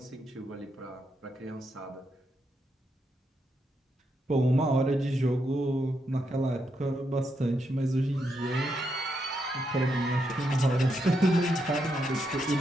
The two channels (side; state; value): both; normal; correlation 0.81